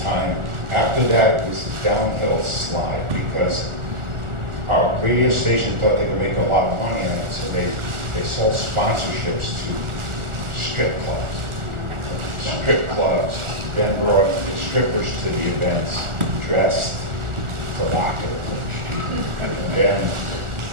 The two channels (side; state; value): left; late; 1.4 ms